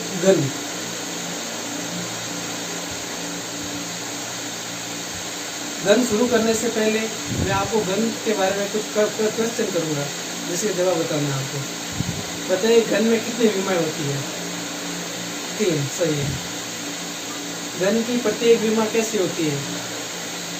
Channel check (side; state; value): both; identical; correlation 1.00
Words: घन शुरू करने से पहले मैं आपको घन के बारे में कुछ क्वेश्चन करूंगा, जिसके जवाब बताना है आपको। बताइए घन में कितनी विमाएं होती है? 3, सही है। घन की प्रत्येक विमा कैसी होती है?